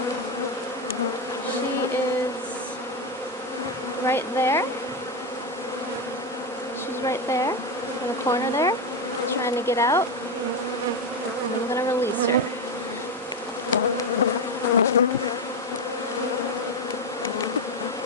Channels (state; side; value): normal; both; correlation 0.11